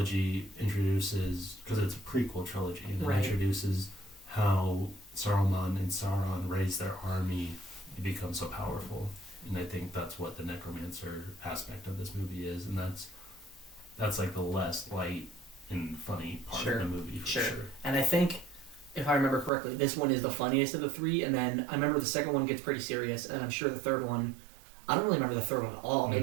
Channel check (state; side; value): drops out; left; at 19.5 s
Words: introduces, because it's a prequel trilogy, and it introduces how Saruman and Sauron raise their army and become so powerful. And I think that's what the necromancer aspect of this movie is, and that's like the less light and funny part of the movie for sure. And I think, if I remember correctly, this one is the funniest of the three, and then I remember the second one gets pretty serious, and I'm sure the third one, I don't really remember the third one at all.